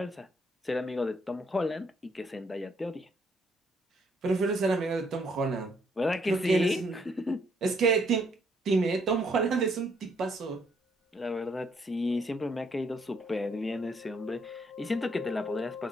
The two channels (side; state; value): both; normal; correlation 0.70